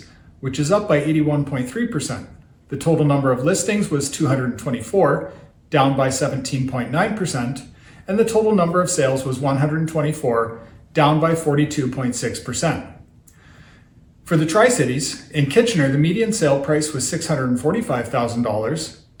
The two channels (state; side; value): identical; both; correlation 1.00